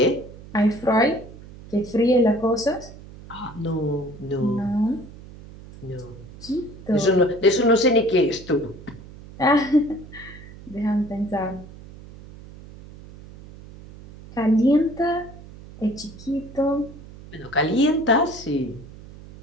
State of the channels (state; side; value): noise; right; hum, 17 dB below the sound